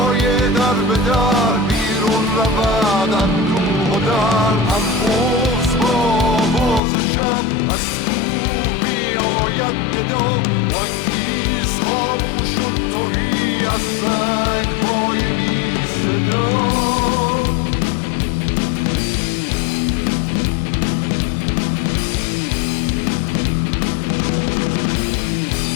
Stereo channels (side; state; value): right; drops out; at 6.8 s